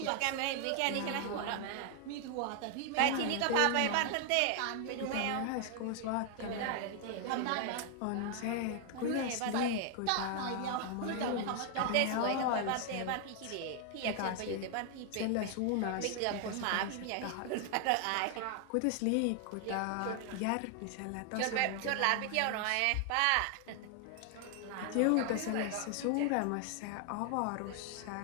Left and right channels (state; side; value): different; both; correlation 0.00